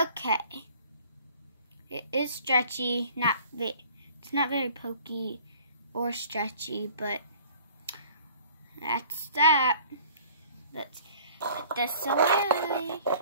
It is stretchy, it's not very pokey or stretchy, but that's that. Let's put this away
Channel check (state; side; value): inverted; both; correlation -0.50